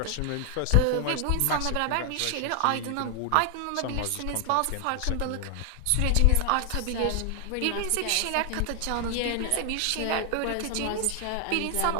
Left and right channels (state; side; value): different; both; correlation 0.00